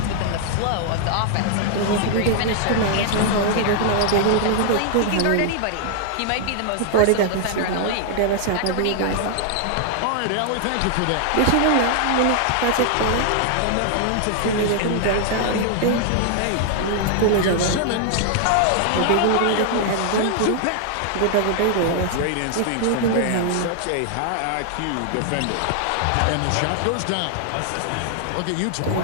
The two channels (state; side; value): different; both; correlation 0.00